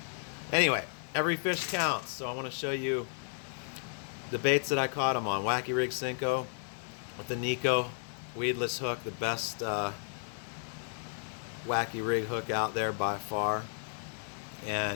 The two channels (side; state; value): right; silent; 56 dB below the other